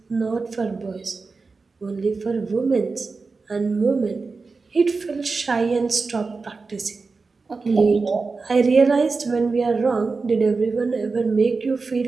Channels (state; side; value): quieter; left; 4.2 dB